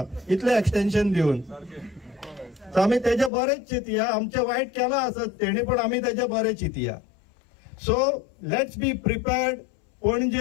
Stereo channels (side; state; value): right; drops out; at 3.3 s